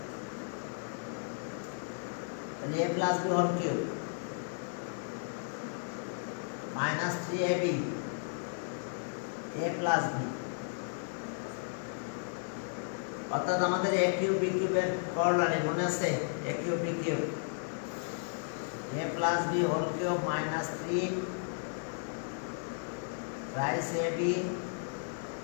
তাহলে a + b whole cube minus 3ab a + b, অর্থাৎ আমাদের a³ b³ এর কর্নারে মনে আছে, a³ b³ a + b whole cube minus 3 thrice ab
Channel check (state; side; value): silent; right; digital silence